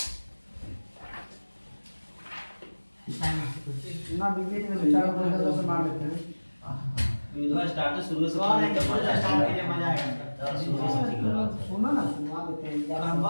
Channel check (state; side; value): inverted; both; correlation -1.00